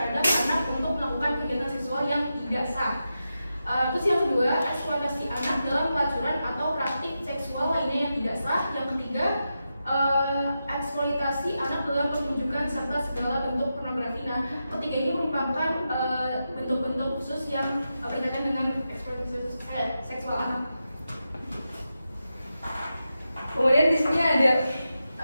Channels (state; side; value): inverted; both; correlation -0.89